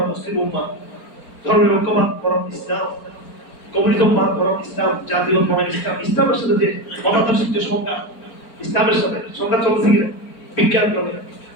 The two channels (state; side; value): late; right; 4.4 ms